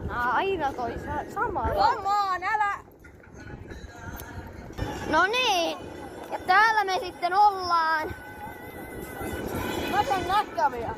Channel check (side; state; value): both; identical; correlation 1.00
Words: Aina toi sama. Come on, älä! No niin, ja täällä me sitten ollaan. Mä saan näkkäviä.